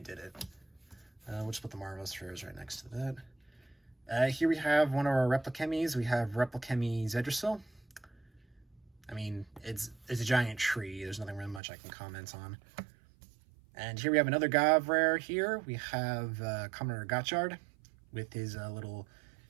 did it. We'll just put the Marvelous Rares right next to that. Here we have one of our Replichemies. We have Replichemy Zedrasil. I mean, it's a giant tree. There's nothing really much I can comment on. And here we have another Gav rare here. We have Kamen Rider Gaッチャードwith his little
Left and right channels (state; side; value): drops out; left; at 11.6 s